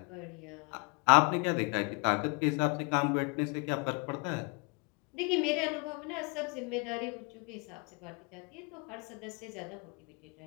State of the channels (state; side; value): quieter; right; 32.6 dB